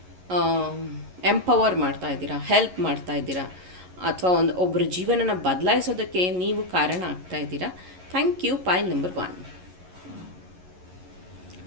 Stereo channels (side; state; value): left; late; 11 ms